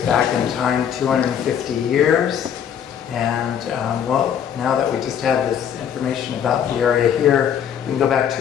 back in time 250 years. And well, now that we just have this information about the area here, we can go back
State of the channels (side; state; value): right; quieter; 8.7 dB